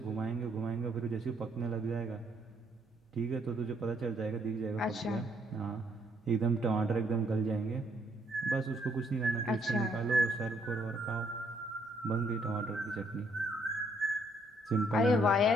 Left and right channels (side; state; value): both; normal; correlation 0.69